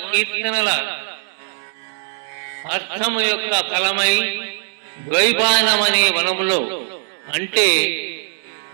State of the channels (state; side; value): silent; left; digital silence